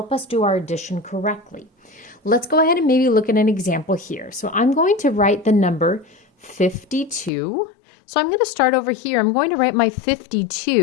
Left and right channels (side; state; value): right; drops out; at 7.3 s